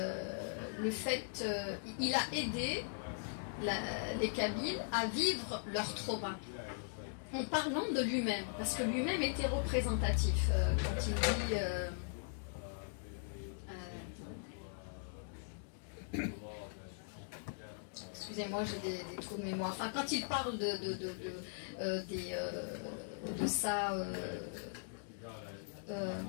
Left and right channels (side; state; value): right; silent; digital silence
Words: fait, il a aidé les Kabyles à vivre leur trauma en parlant de lui-même, parce que lui-même était représentatif quand il dit excusez-moi, j'ai des trous de mémoire. Enfin, quand il parle de ça,